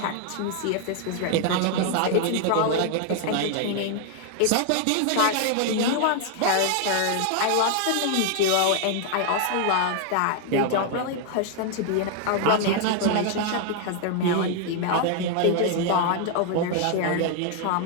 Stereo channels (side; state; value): both; different; correlation 0.00